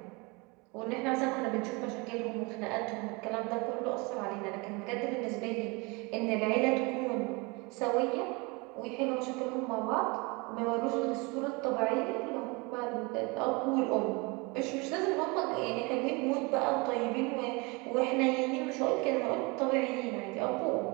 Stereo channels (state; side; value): quieter; left; 27.2 dB